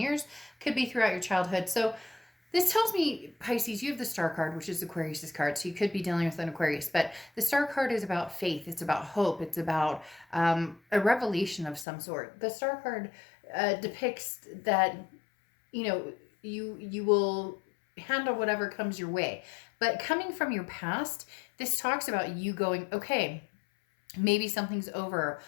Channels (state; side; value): drops out; right; at 11.9 s